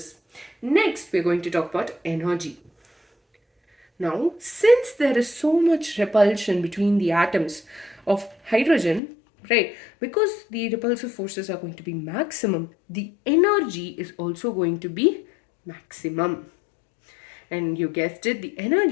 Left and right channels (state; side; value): drops out; right; at 9.0 s